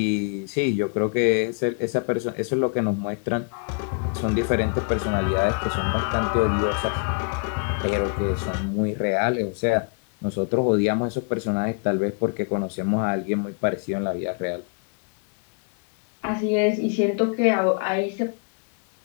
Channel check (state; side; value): quieter; right; 38.3 dB